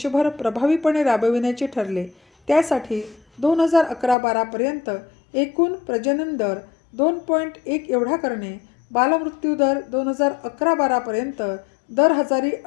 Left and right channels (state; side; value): drops out; right; at 4.2 s